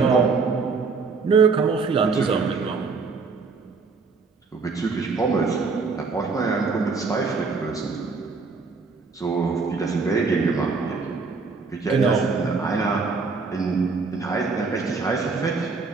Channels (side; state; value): left; quieter; 4.6 dB